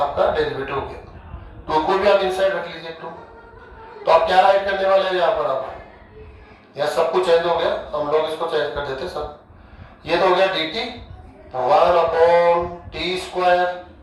डेरिवेटिव हो गया, तो को भी आप इनसाइड रख लीजिए 2। तो आप क्या राइट करने वाले हैं यहाँ पर? आप यहाँ सब कुछ चेंज हो गया, हम लोग इसको चेंज कर देते सब। ये तो हो गया dt 1 upon t square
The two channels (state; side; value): identical; both; correlation 1.00